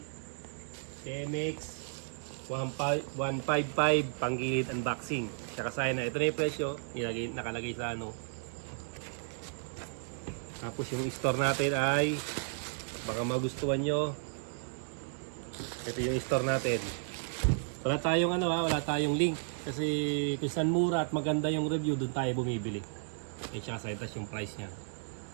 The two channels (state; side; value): silent; left; digital silence